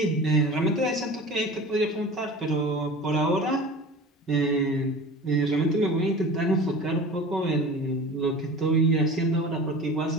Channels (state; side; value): normal; both; correlation 0.37